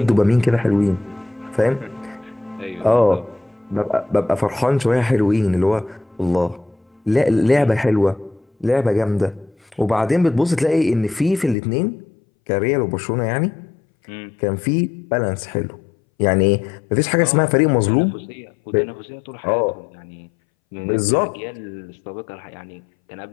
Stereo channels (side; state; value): right; drops out; at 11.6 s